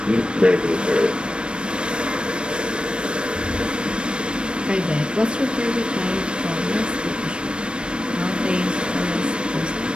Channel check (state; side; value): late; left; 0.055 ms